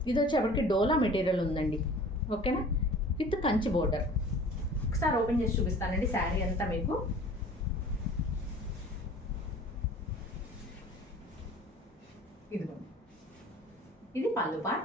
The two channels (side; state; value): both; normal; correlation 0.46